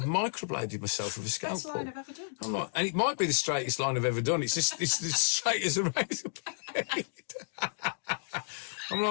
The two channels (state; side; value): silent; right; digital silence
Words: microbladed myself with a scalpel. Best line I've ever done. I'm like, and it might be the straightest line I've ever done. It's just, it's the straight as a razor blade. I'm